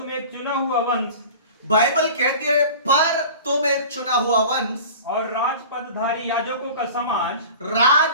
एक चुना हुआ वंश, बाइबल कहती है पर तुम एक चुना हुआ वंश और राजपदधारी याजकों का समाज,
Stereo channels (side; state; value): both; inverted; correlation -0.39